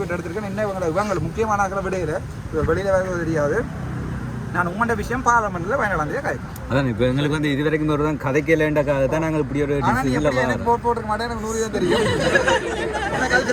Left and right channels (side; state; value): both; identical; correlation 1.00